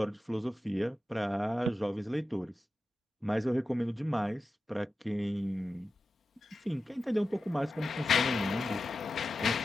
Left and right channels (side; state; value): both; normal; correlation 0.92